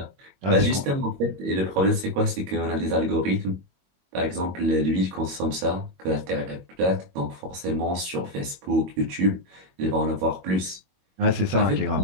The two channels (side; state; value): left; late; 22 ms